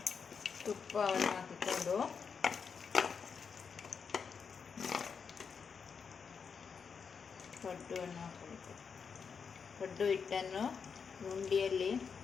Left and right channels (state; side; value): quieter; right; 6.1 dB